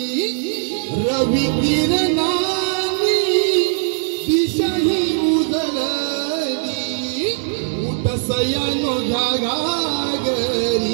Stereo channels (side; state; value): left; silent; 64 dB below the other